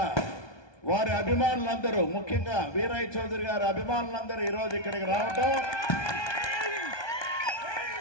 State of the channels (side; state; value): right; late; 1.2 ms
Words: వారి అభిమానులందరూ, ముఖ్యంగా వీరయ్య చౌదరి గారి అభిమానులందరూ ఈరోజు ఇక్కడికి రావటం,